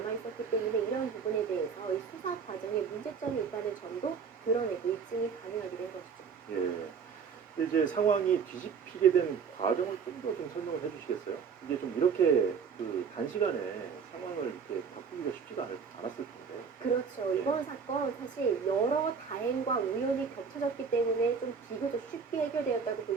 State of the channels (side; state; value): left; quieter; 6.1 dB